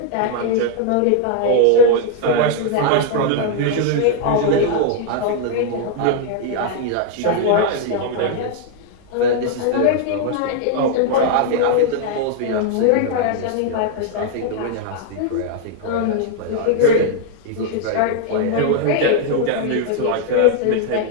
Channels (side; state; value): both; different; correlation 0.00